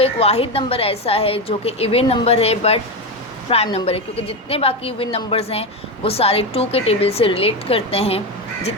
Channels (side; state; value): both; normal; correlation 0.14